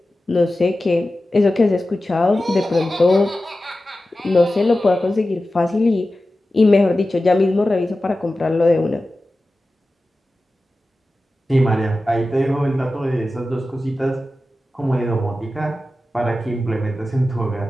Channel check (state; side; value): normal; both; correlation 0.94